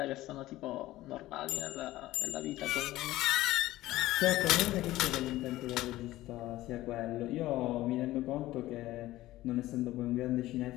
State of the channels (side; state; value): right; quieter; 16.3 dB